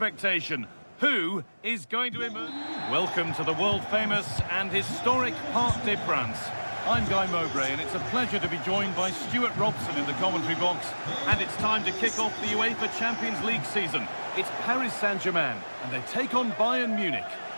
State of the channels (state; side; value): inverted; both; correlation -1.00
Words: Who is going to emerge? Welcome to the world-famous and historic Parc des Princes. I'm Guy Mowbray, and it's a pleasure to be joined by Stuart Robson in the commentary box. And it's time to kick off the UEFA Champions League season. It's Paris Saint-Germain, and they take on Bayern Munich.